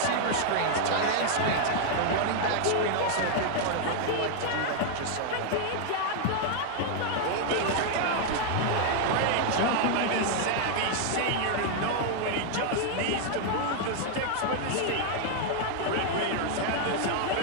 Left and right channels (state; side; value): different; both; correlation 0.00